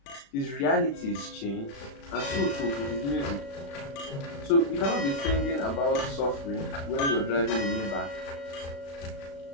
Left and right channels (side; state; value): right; late; 36 ms